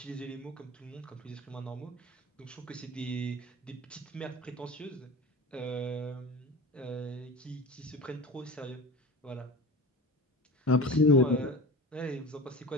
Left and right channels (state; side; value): normal; both; correlation 0.33